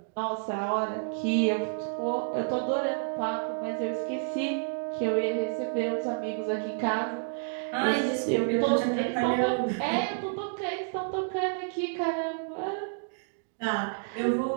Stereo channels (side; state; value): left; silent; digital silence